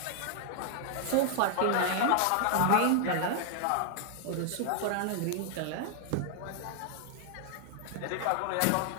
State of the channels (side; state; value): both; different; correlation 0.00